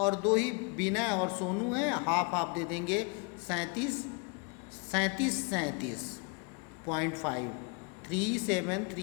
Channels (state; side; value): quieter; right; 32.8 dB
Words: दो ही विनय और सोनू हैं, हाफ हाफ दे देंगे 37.5,